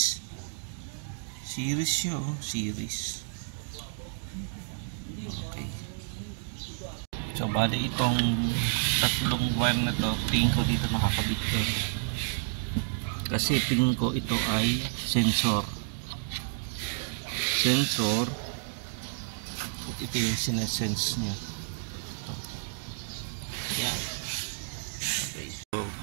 Series siya, oh. Series. Okay. So bali itong tatlong wire na to, tingin ko dito makakabit to. Kasi tingin ko ito ay sensor. Sensor. Ito yung sinesense niya. Ito. Yan. Okay. So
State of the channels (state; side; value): silent; left; digital silence